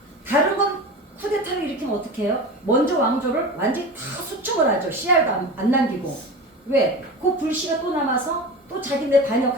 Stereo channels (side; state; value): both; normal; correlation 0.30